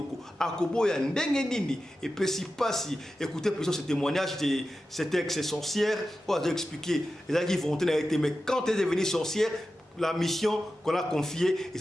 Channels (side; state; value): both; normal; correlation 0.93